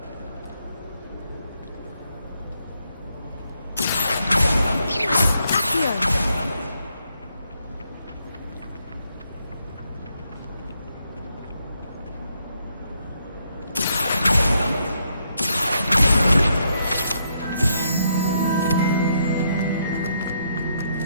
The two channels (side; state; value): both; inverted; correlation -0.76